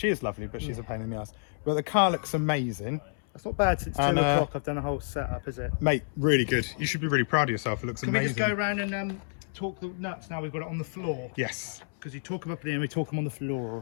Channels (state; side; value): silent; right; 58 dB below the other